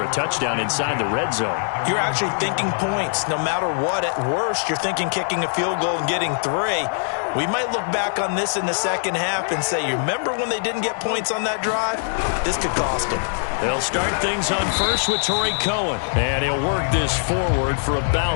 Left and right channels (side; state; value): right; silent; 59 dB below the other